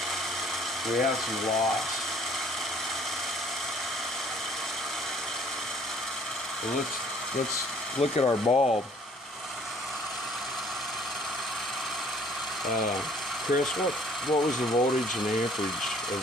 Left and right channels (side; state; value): both; normal; correlation 0.58